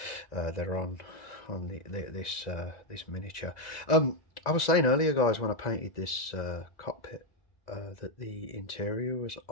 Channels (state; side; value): late; right; 1.9 ms